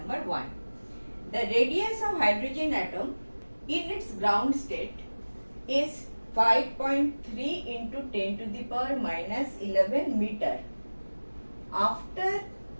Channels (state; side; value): inverted; both; correlation -1.00